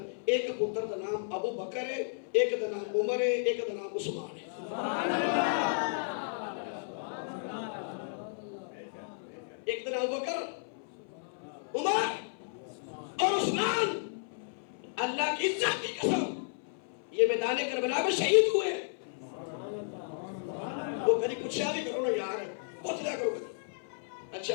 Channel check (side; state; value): right; silent; 55 dB below the other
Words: ایک پتر دا نام ابو بکر ہے ایک دا نام عمر ہے ایک دا نام عثمان ہے ایک دا نام ابو بکر عمر اور عثمان اللہ کی عزت کی قسم یہ میدان کربلا میں شہید ہوئے ہیں وہ کبھی کچھ بھی کرو نا یار بہت زیادہ کرو کبھی اچھا